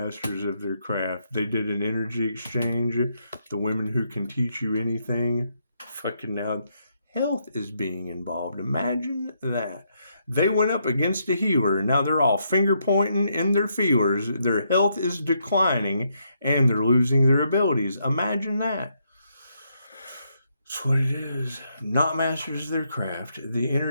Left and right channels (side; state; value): both; inverted; correlation -0.77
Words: of their craft. They did an energy exchange. The women who can teach you anything. Fucking now, health is being involved. Imagine that. They went up against a healer, and now they're all finger pointing in their feelers. Their health is declining, and they're losing their abilities. Imagine that. That's what it is. Not masters of their craft. The